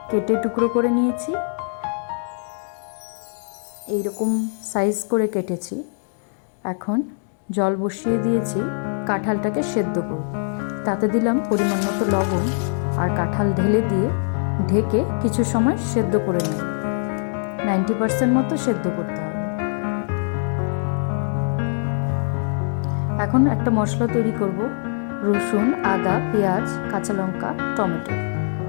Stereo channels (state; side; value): silent; right; 64 dB below the other